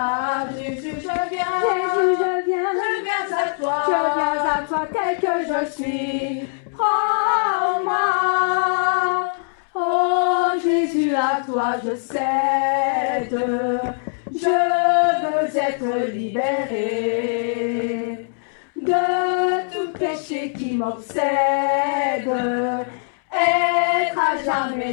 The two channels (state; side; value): silent; right; 65 dB below the other